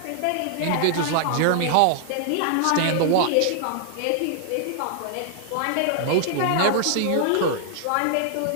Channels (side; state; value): both; different; correlation 0.00